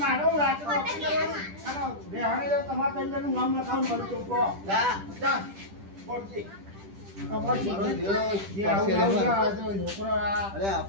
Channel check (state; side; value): late; left; 10 ms